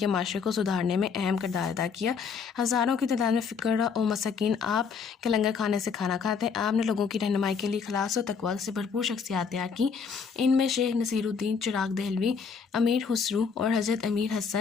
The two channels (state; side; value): quieter; right; 5.9 dB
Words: معاشرے کو سدھارنے میں اہم کردار ادا کیا۔ ہزاروں کی تعداد میں فقراء و مساکین آپ کے لنگر کھانے سے کھانا کھاتے۔ آپ نے لوگوں کی رہنمائی کے لیے اخلاص و تقویٰ سے بھرپور شخصیات تیار کی۔ ان میں شیخ نصیر الدین چراغ دہلوی، امیر خسرو اور حضرت امیر